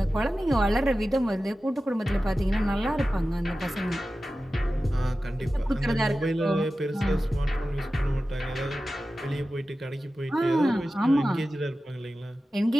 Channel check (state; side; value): normal; both; correlation 0.94